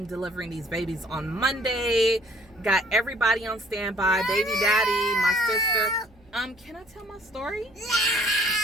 delivering these babies on Monday. Got everybody on standby, baby daddy, my sister. Can I tell my story? No.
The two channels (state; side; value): noise; right; hum, 29 dB below the sound